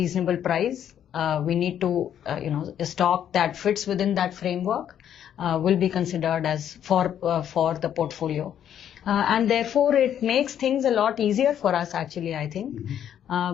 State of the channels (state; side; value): quieter; right; 9.8 dB